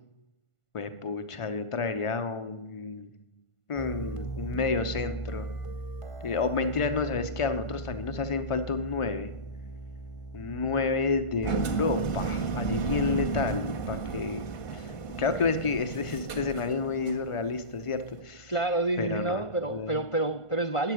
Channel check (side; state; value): right; late; 1.5 ms